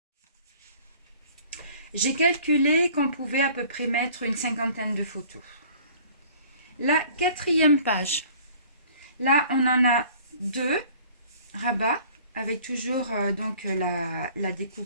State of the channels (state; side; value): inverted; both; correlation -0.51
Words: J'ai calculé qu'on pouvait à peu près mettre une cinquantaine de photos. La 4e page. Là, on en a 2 rabats avec toujours donc la